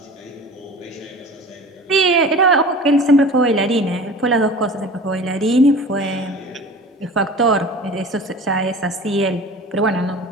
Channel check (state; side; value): normal; both; correlation 0.39